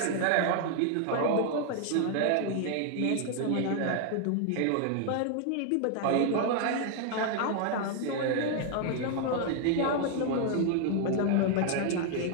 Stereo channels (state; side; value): different; both; correlation 0.00